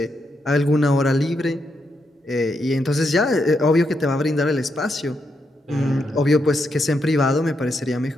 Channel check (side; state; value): both; normal; correlation 0.81